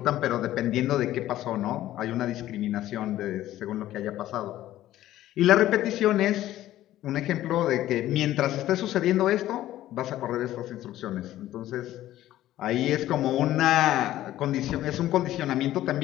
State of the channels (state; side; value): quieter; right; 14.0 dB